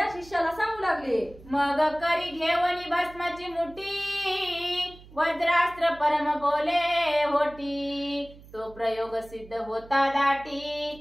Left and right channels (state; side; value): noise; right; hum, 21 dB below the sound